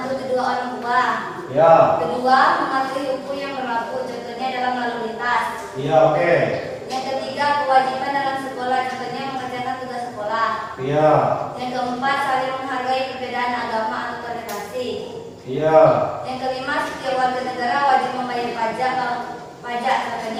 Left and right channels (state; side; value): identical; both; correlation 1.00